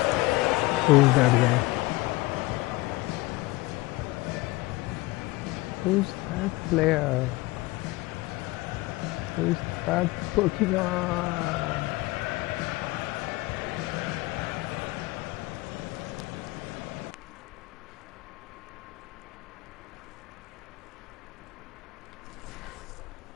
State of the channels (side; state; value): right; quieter; 20.9 dB